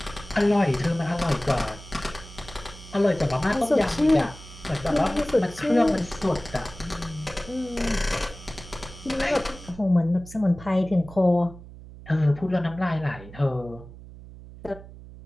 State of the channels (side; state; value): right; noise; hum, 17 dB below the sound